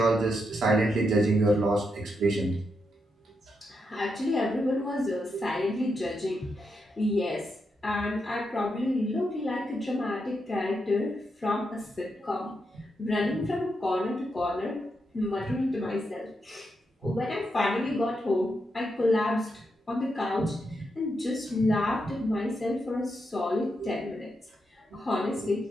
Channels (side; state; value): both; normal; correlation 0.83